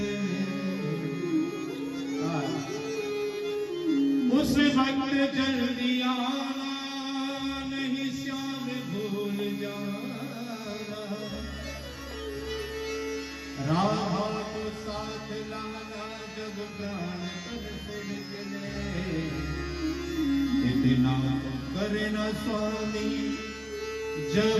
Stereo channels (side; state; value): both; identical; correlation 1.00